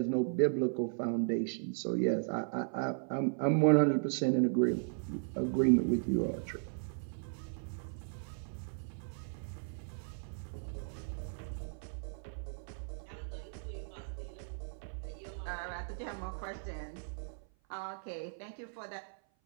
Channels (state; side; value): silent; left; 54 dB below the other